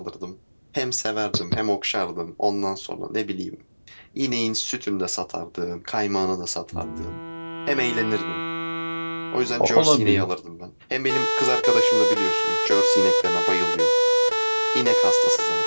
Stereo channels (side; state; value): both; inverted; correlation -1.00